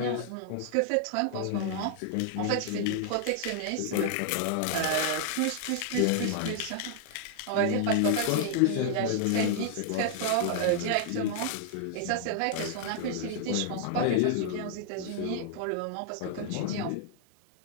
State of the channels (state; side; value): different; both; correlation -0.01